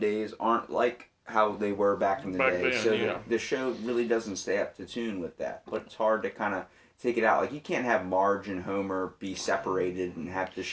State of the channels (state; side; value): identical; both; correlation 1.00